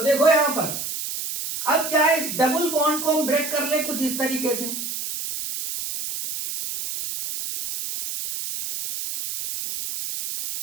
देखो यहां पर अब क्या है, इस डबल बॉन्ड को हम ब्रेक कर ले कुछ इस तरीके से।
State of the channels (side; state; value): right; noise; hiss, 6 dB below the sound